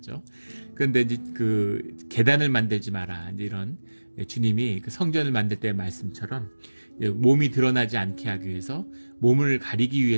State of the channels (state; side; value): inverted; both; correlation -1.00